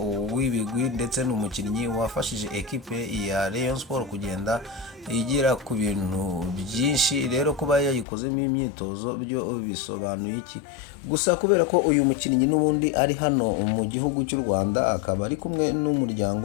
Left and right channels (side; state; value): right; drops out; at 8.1 s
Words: w'ibigwi, ndetse ni umukinnyi wafashije ekipe ya Rayon Sport kugenda igira ku bintu byinshi. Rero kuba yayikozemo imyitozo byo bisobanuye iki? Gusa kubera ko uyu mukinnyi n'ubundi ari hano mu gihugu cy'u Rwanda, akaba ari kumwe